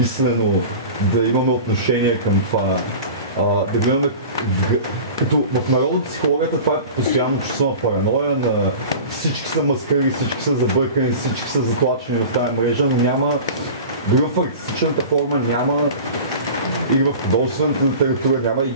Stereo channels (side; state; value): both; inverted; correlation -0.36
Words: да имаме отношение към това. Да гледаме, като в народопсихологията това е постоянно чувство на параноя, на всички са маскари, всички са забъркани, всички са затлачени в тази мрежа, но няма, дори в артистичната форма няма, или в художествената литература няма и